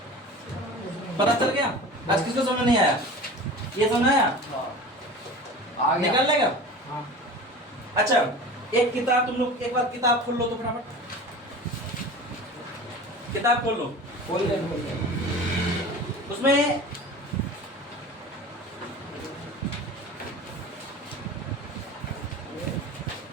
पता चल गया? आज किसको समझ नहीं आया? ये समझ आया? आ गया। निकल लेगा? हाँ। अच्छा एक किताब तुम लोग एक बार किताब खोल लो तो फटाफट किताब खोल लो। खोल दे। उसमें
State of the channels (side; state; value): both; normal; correlation 0.36